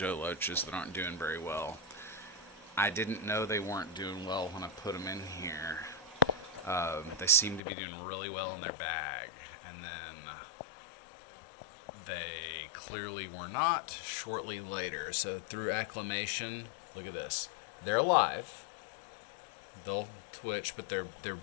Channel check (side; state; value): right; drops out; at 7.6 s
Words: loaches that aren't doing very well. I didn't know they weren't doing well when I put them in here. They seem to be doing really well in their bag, and then they clearly were not shortly later. So through acclimation, look at this. They're alive. They'll twitch, but they're